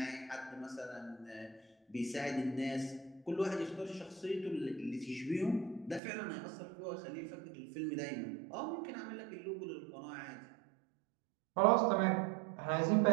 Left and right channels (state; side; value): drops out; left; at 6.0 s